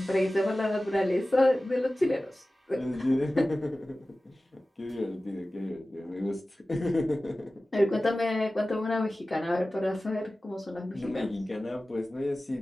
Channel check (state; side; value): normal; both; correlation 0.96